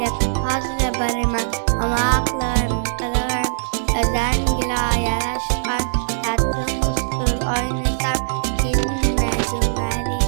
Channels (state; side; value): silent; left; 65 dB below the other